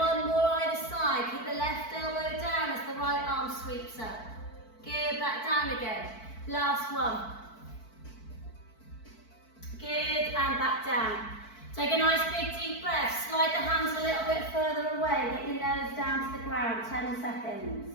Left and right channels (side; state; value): right; late; 4.5 ms